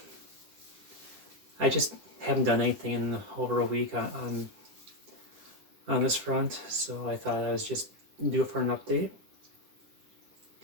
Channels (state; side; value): late; left; 10 ms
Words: I just haven't done anything in over a week on this front, so I thought I was just do it for an update.